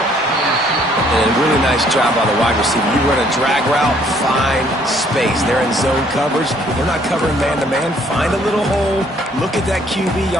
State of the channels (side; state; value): both; normal; correlation 0.63